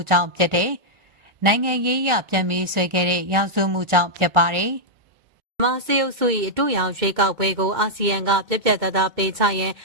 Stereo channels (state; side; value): late; left; 1.4 ms